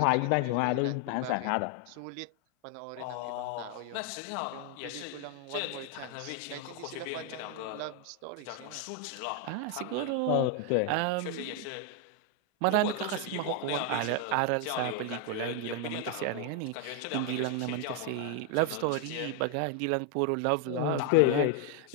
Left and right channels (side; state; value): both; different; correlation 0.01